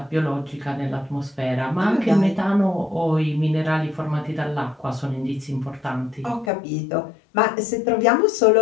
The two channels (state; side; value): drops out; right; at 6.5 s